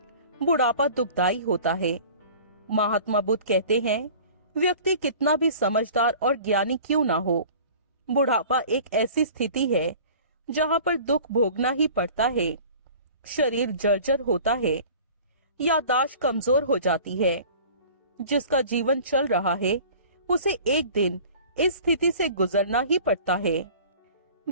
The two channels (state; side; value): inverted; both; correlation -0.44